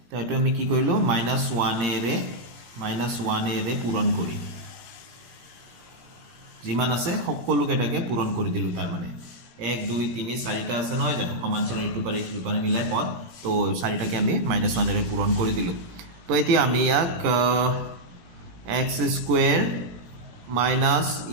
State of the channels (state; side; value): late; left; 17 ms